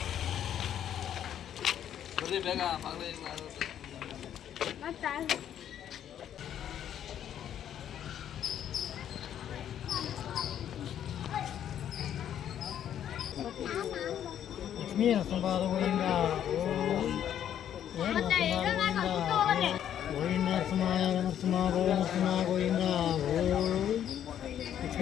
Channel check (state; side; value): quieter; right; 10.1 dB